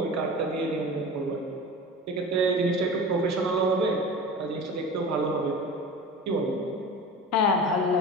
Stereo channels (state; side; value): normal; both; correlation 0.34